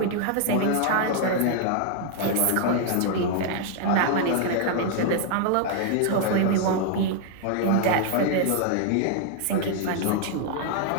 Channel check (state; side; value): different; both; correlation 0.00